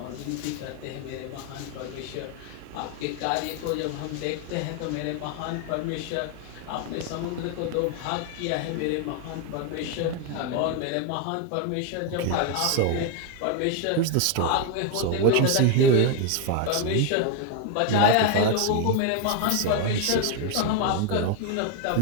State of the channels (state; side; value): different; both; correlation 0.01